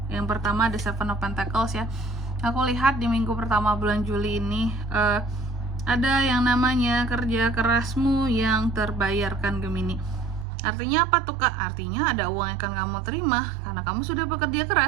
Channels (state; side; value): drops out; left; at 10.5 s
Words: Yang pertama ada Seven of Pentacles ya. Aku lihat di minggu pertama bulan Juli ini ada yang namanya kerja kerasmu yang terbayarkan Gemini. Artinya apa tuh kak? Artinya ada uang yang akan kamu terima karena kamu sudah bekerja